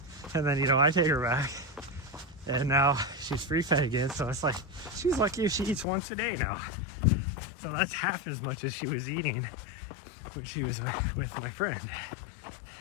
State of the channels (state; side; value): drops out; right; at 5.9 s